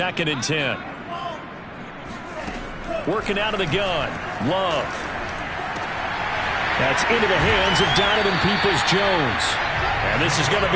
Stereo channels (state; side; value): identical; both; correlation 1.00